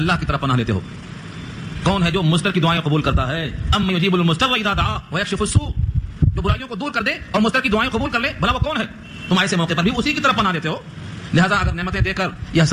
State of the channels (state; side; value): identical; both; correlation 1.00